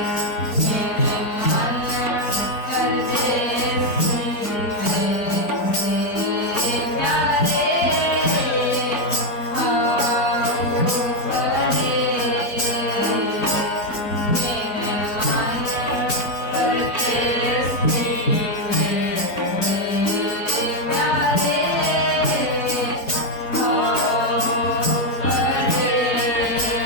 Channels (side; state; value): right; late; 4.4 ms